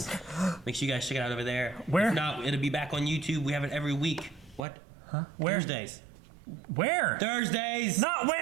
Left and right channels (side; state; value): left; drops out; at 4.7 s